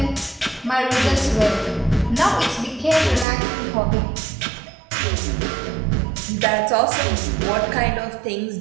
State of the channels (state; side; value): drops out; left; at 3.2 s